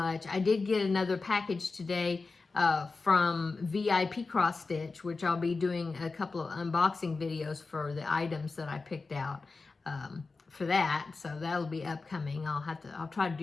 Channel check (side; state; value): right; quieter; 4.0 dB